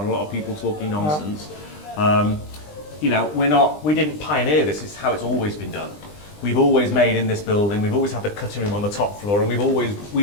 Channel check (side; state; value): right; late; 20 ms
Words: a lot of people talking nonsense. We didn't pioneer this. It's how it's always been done. We've always made in this building. We've always had the cutting room on the top floor, and we've